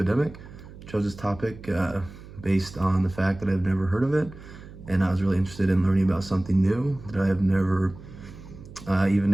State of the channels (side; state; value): right; noise; hum, 17 dB below the sound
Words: Chose this topic based on the fact that I've never heard of it, and I was really interested in learning about something new that I have never even